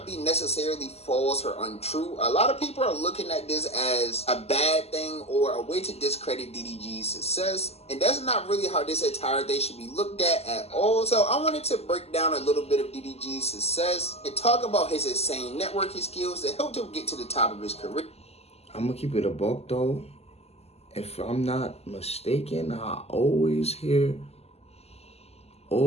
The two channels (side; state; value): right; late; 0.30 ms